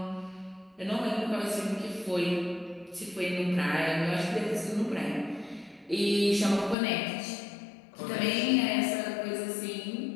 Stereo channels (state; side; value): drops out; right; at 6.8 s